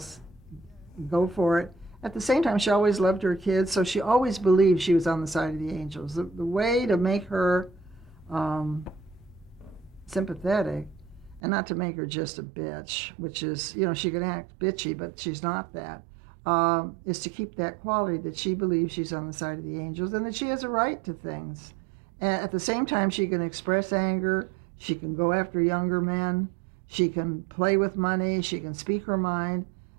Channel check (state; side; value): drops out; left; at 11.4 s